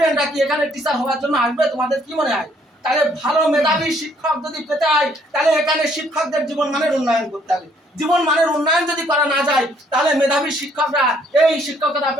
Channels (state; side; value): normal; both; correlation 0.65